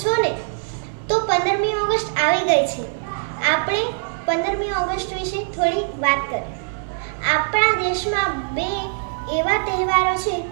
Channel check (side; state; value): left; silent; 60 dB below the other